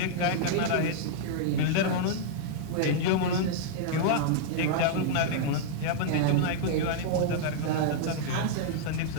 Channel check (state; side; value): different; both; correlation -0.01